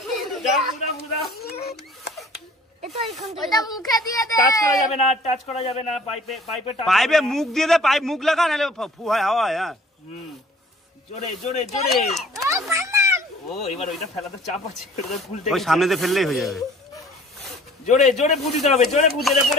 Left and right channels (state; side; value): normal; both; correlation 0.51